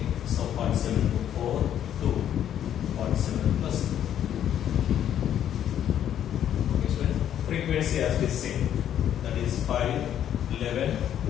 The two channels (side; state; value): right; quieter; 10.3 dB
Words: so 47 to 4 to 47 plus 4. Okay, students. Frequency as we say, that is 5, 11,